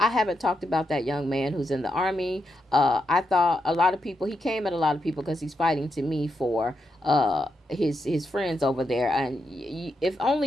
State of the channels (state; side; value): normal; both; correlation 0.84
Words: haven't talked about that young man who's in the army. I thought he came at a lot of people because he's fighting to me for his friends over there. And if